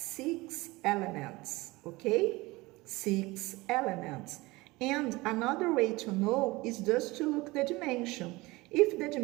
elements, okay? 6 elements. And another way to know is just to look the dimension. If the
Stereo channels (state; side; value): quieter; left; 21.7 dB